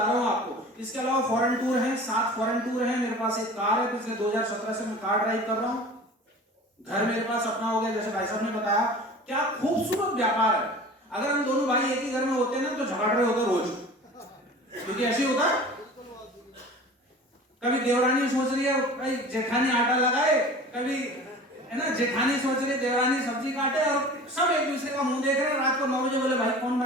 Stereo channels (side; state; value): both; normal; correlation 0.40